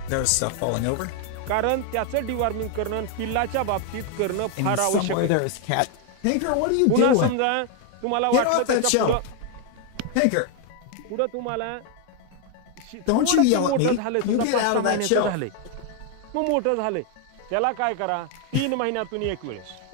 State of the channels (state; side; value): different; both; correlation 0.01